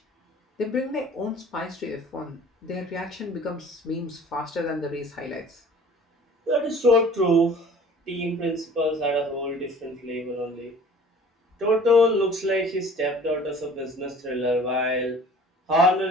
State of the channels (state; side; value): normal; both; correlation 0.48